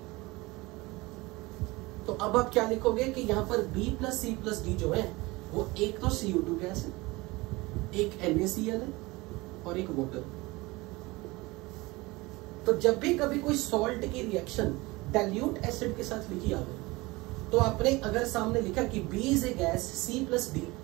तो अब आप क्या लिखोगे कि यहां पर B+C+D जो है वो एक तो CO2 गैस है, एक NaCl है और एक वाटर। तो जब भी कभी कोई सॉल्ट की रिएक्शन डाइल्यूट एसिड के साथ लिखी आ गई, तो आपने अगर सामने लिखा कि B is a gas C+D,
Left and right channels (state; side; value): quieter; left; 22.3 dB